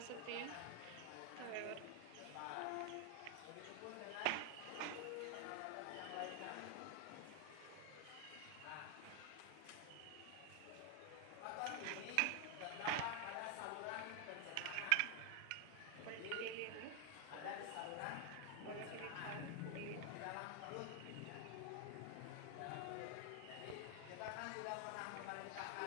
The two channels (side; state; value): both; different; correlation 0.00